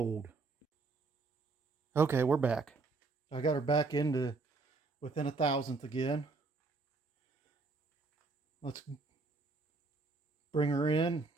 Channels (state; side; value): quieter; left; 3.7 dB